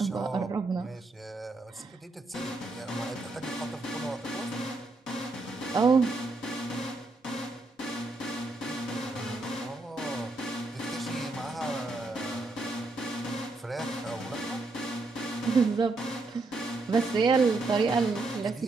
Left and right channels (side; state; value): left; quieter; 3.2 dB